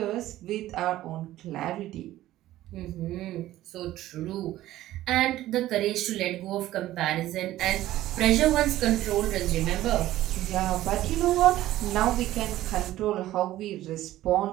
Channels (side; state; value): left; quieter; 14.7 dB